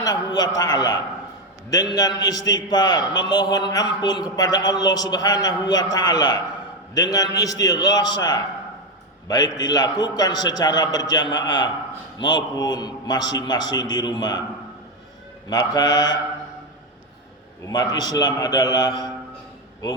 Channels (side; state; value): both; normal; correlation 0.10